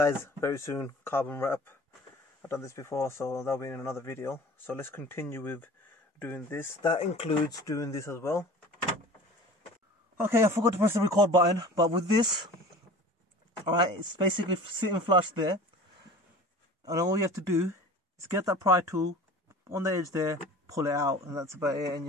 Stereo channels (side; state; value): both; normal; correlation 0.41